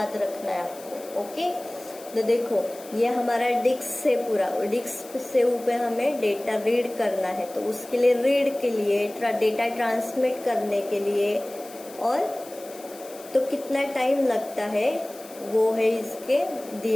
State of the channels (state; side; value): noise; left; hiss, 19 dB below the sound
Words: रखना है आपको। ओके, तो देखो ये हमारा डिस्क से पूरा, डिस्क से ऊपर हमें डेटा रीड करना है, तो उसके लिए रीड के लिए डेटा ट्रांसमिट करने के लिए और तो कितना टाइम लगता है वो है इसके